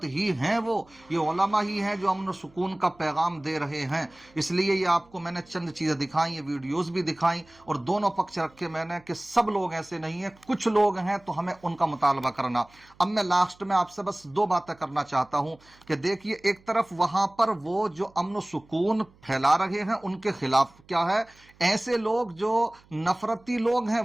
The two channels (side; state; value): right; noise; hum, 29 dB below the sound